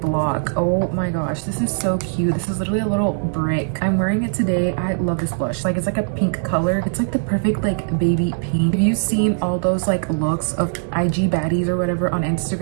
Oh my gosh, this is so cute. This is literally a little brick. I'm wearing it today. I love this blush. Like, it's like a pink color. It's like the perfect like baby pink. Have you seen all those like looks of IG baddies or whatever on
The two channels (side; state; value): left; silent; 65 dB below the other